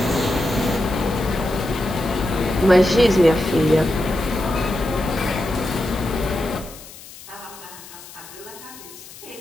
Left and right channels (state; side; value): noise; left; hiss, 17 dB below the sound